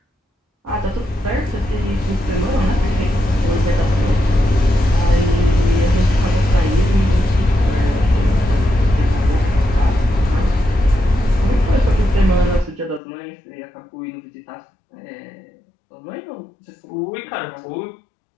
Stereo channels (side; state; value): right; drops out; at 13.0 s